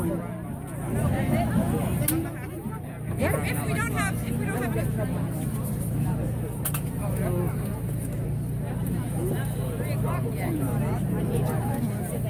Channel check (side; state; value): both; identical; correlation 1.00